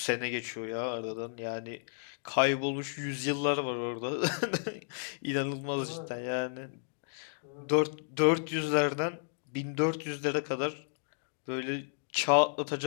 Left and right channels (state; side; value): silent; right; digital silence